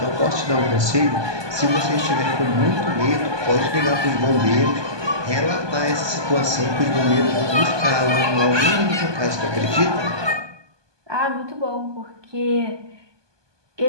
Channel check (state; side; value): late; left; 1.2 ms